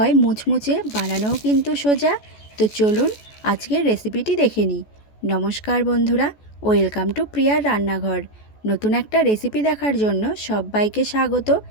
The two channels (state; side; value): late; right; 14 ms